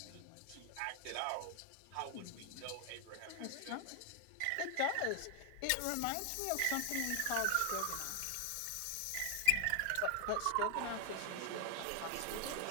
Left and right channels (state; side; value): different; both; correlation 0.00